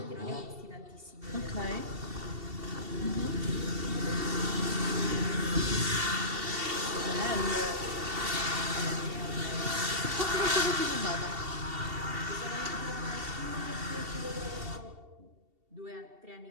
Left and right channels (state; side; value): late; left; 2.7 ms